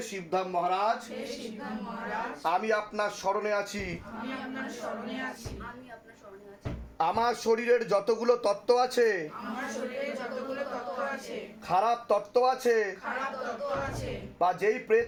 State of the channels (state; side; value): identical; both; correlation 1.00